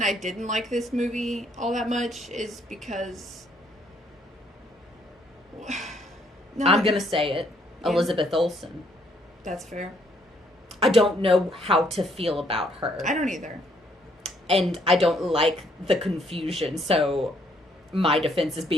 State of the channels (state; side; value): normal; both; correlation 0.68